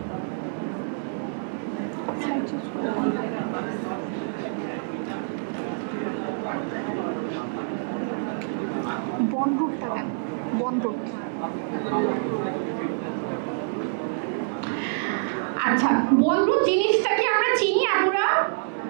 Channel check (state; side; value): silent; left; digital silence